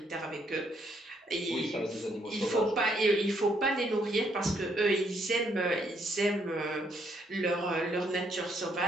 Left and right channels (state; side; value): normal; both; correlation 0.71